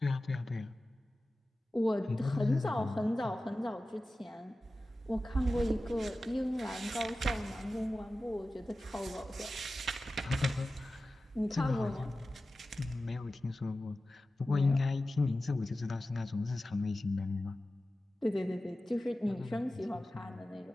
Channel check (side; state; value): both; normal; correlation 0.95